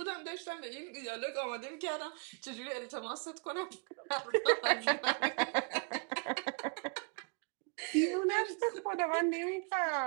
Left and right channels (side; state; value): left; quieter; 36.6 dB